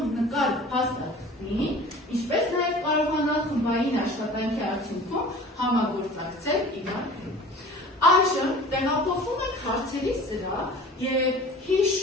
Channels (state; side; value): normal; both; correlation 0.43